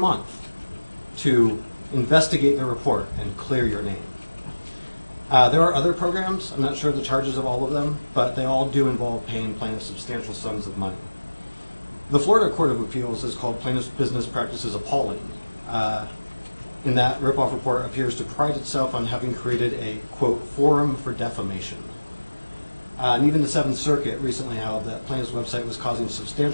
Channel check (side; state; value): both; inverted; correlation -1.00